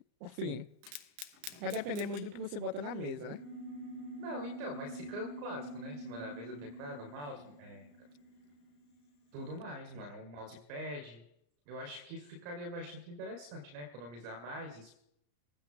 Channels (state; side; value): late; left; 34 ms